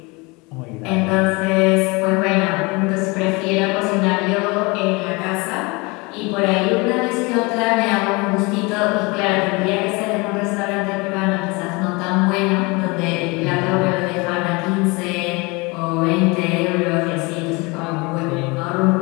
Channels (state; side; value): quieter; right; 26.6 dB